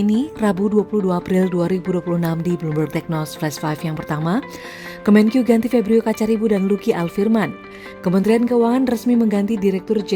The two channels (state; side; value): identical; both; correlation 1.00